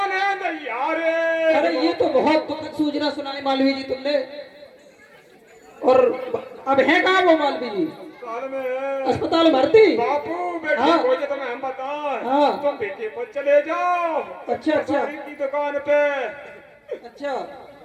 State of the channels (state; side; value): identical; both; correlation 1.00